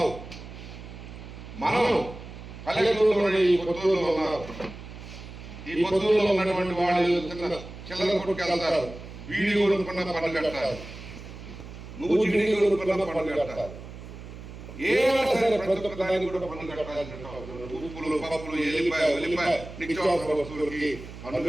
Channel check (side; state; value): right; noise; hum, 13 dB below the sound